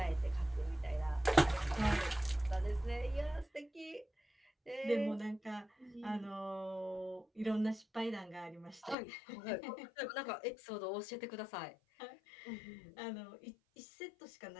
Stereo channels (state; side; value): drops out; right; at 9.0 s